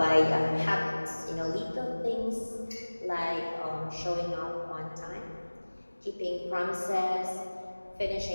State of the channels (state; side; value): inverted; both; correlation -1.00